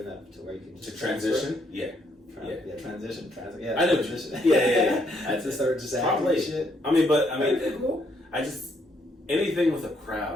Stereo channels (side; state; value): both; normal; correlation 0.72